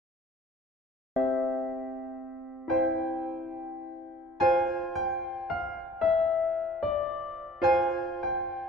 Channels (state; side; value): normal; both; correlation 0.52